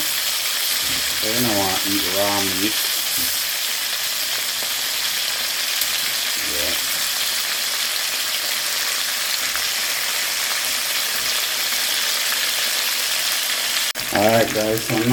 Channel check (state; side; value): identical; both; correlation 1.00